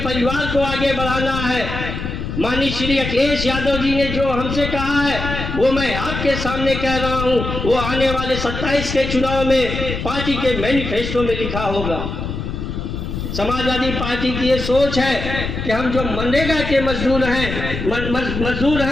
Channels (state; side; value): noise; left; rumble, 5 dB below the sound